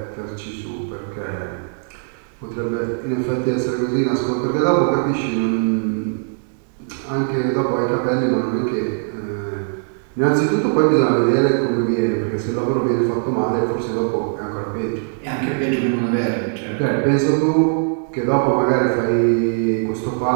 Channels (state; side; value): silent; left; digital silence